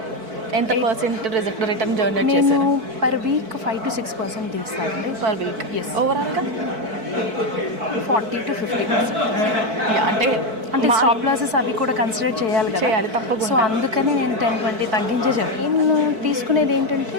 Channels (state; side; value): late; left; 4.5 ms